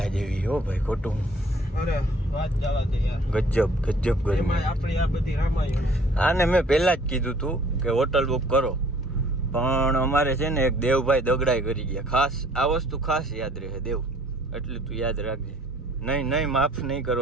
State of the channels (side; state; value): both; normal; correlation 0.56